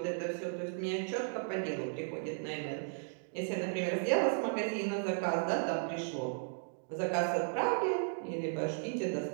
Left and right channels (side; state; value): left; silent; digital silence